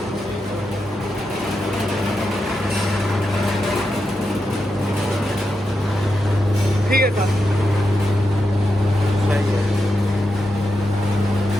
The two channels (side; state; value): both; normal; correlation 0.87